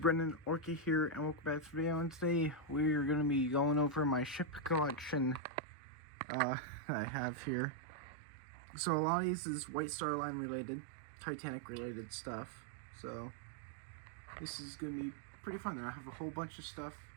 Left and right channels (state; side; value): drops out; left; at 5.4 s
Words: Orky here, and welcome back to the video. And today we're going to be going over my ship collection that I have here. So a lot of these is White Star Line related, Titanic related stuff. So this is going to be pretty fun. I have a whole bunch of stuff